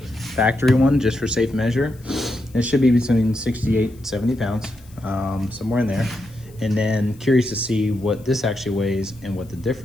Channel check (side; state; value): left; noise; hiss, 27 dB below the sound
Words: factory one just for safe measure. It should be between 68, 70 pounds, somewhere in there. And then curious to see what this actually weighs and what the